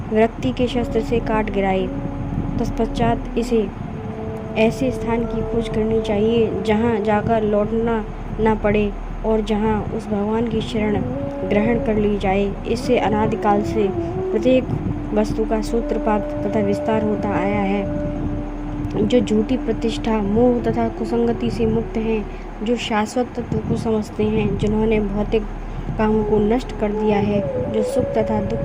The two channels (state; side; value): identical; both; correlation 1.00